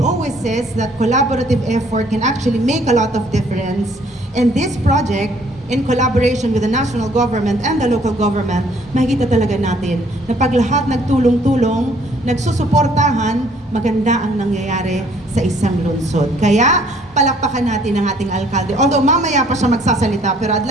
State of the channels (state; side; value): normal; both; correlation 0.61